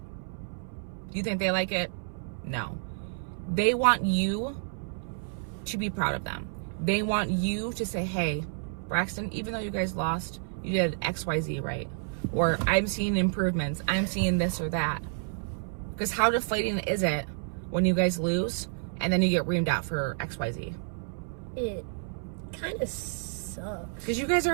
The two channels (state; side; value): silent; left; 58 dB below the other